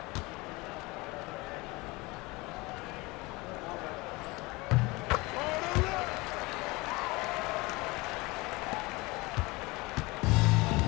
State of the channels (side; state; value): right; quieter; 23.6 dB